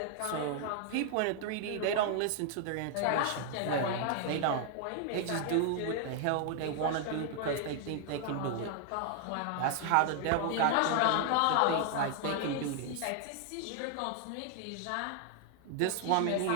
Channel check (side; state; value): both; different; correlation 0.00